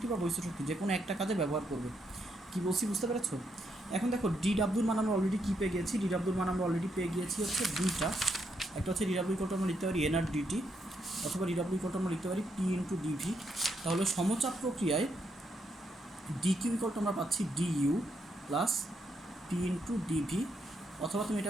বা বহিস্থ শক্তি যে কোনো একটা কাজে ব্যবহার করবে। কি বলছি বুঝতে পেরেছো? এখন দেখো DWর মান আমরা অলরেডি কী পেয়ে গিয়েছি, DWর মান আমরা অলরেডি পেয়ে গিয়েছি হচ্ছে দুইটা। একটা হচ্ছে DW ইকুয়াল টু আমরা লিখতে পারি NR DT, অথবা DW ইকুয়াল টু আমরা লিখতে পারি P ইন্টু DV। তাহলে সমচাপ প্রক্রিয়ায় DQ ইকুয়াল টু আমরা পাচ্ছি DU plus P into DV, অথবা তুমি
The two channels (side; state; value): both; normal; correlation 0.78